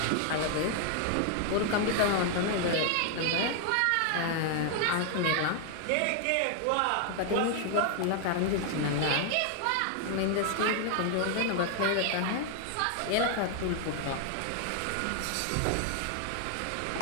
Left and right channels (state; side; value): different; both; correlation 0.00